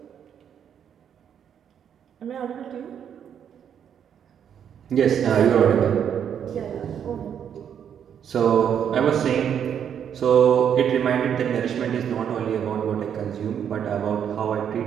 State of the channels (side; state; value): left; quieter; 8.6 dB